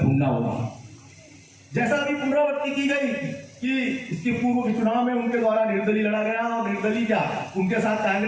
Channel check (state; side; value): identical; both; correlation 1.00